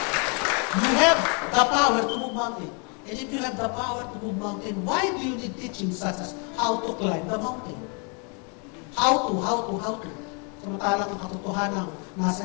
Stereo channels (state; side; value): quieter; right; 36.2 dB